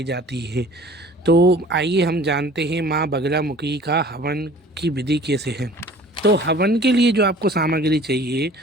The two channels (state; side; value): normal; both; correlation 0.48